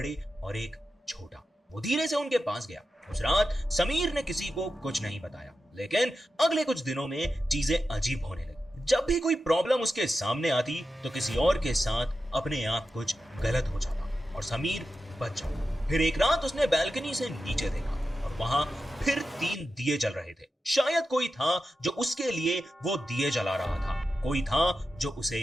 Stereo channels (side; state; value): both; normal; correlation 0.91